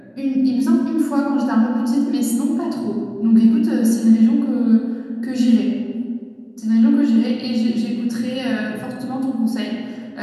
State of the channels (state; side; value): identical; both; correlation 1.00